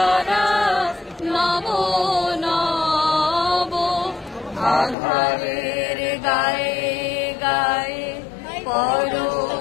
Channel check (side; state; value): right; drops out; at 5.0 s